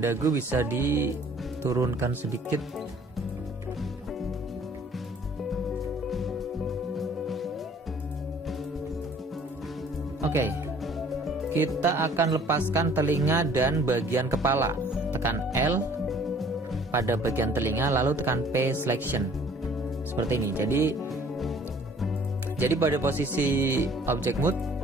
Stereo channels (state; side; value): normal; both; correlation 0.55